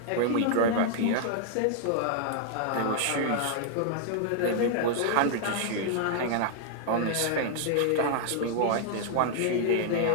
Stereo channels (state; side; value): different; both; correlation -0.01